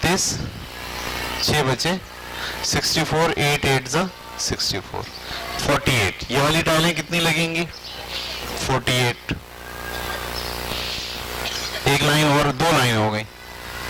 6 बचे 64, 8 8 जा 64, 48। ये वाली टाइलें कितनी लगेंगी? 48। एक लाइन और 2 लाइन हो गई।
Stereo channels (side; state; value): both; identical; correlation 1.00